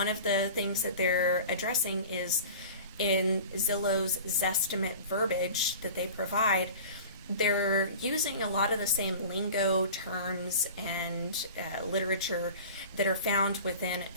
of the things that they're addressing is in Zillow's Zestimate verbiage that they provide, they're using a lot of the same lingo, terms, and literature that are found within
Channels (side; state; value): both; inverted; correlation -0.38